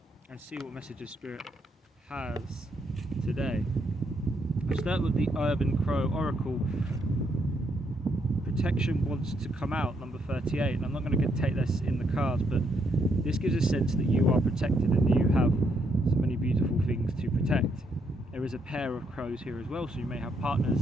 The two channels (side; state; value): both; normal; correlation 0.75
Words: and see what messages Spirit has today. I'll start with the Urban Crow Oracle. Protection wants to come out, number 38, and I'm not going to take this in the cards, but this gives a sense that you are protected and you have so many beautiful things to protect. There is a pair of crows here as well, so you may have partners